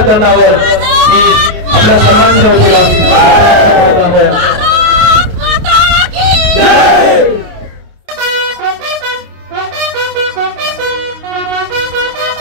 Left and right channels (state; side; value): late; left; 28 ms